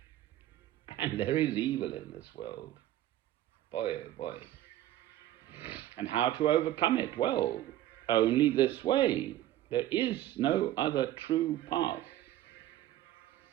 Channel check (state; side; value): quieter; left; 13.5 dB